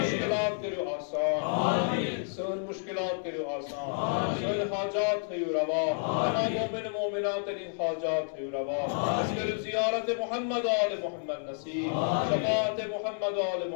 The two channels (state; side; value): silent; right; digital silence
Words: کرو آسان، سن مشکلات کرو آسان، سن حاجات ہے روا، تمام مومن مومنات ان حاجات ہے روا. اس کرو زیارت محمد آل محمد نصیب، شفاعت محمد آل